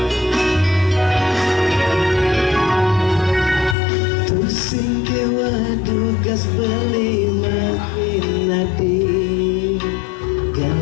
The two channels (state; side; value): drops out; right; at 3.8 s